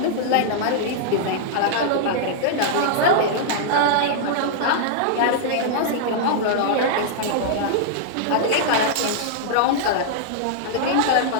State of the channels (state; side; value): different; both; correlation -0.01